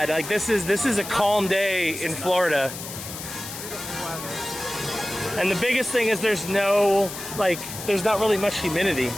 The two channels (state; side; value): noise; left; hiss, 10 dB below the sound